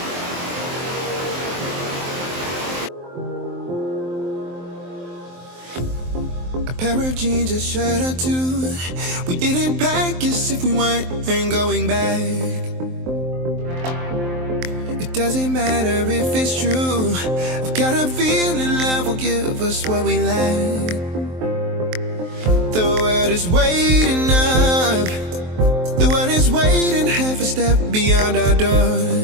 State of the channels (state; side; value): late; left; 23 ms